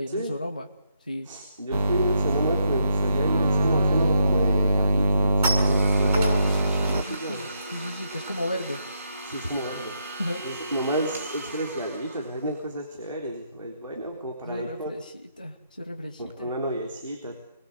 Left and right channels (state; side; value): inverted; both; correlation -0.79